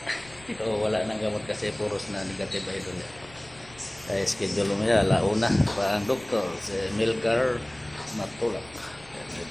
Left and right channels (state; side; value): noise; left; rumble, 23 dB below the sound